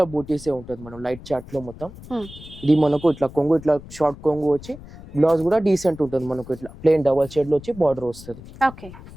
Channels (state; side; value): noise; left; rumble, 17 dB below the sound